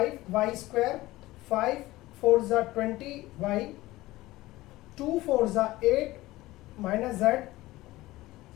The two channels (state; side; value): quieter; right; 18.1 dB